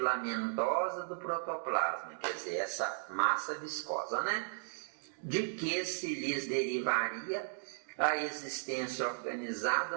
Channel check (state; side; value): silent; left; digital silence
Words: do protoplasma, quer dizer, essa massa viscosa, né? De que se lhes derivaria a existência